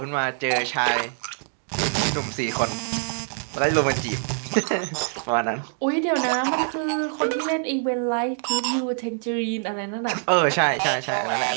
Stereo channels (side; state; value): left; silent; 59 dB below the other